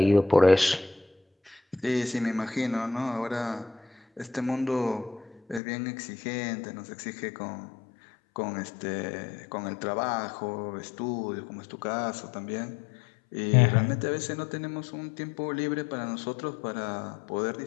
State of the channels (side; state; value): right; drops out; at 5.6 s